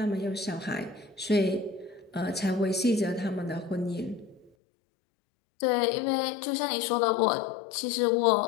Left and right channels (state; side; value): drops out; right; at 4.5 s